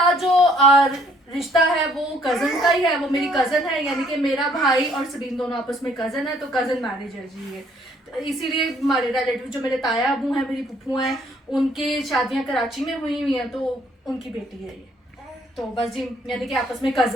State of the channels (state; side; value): normal; both; correlation 0.63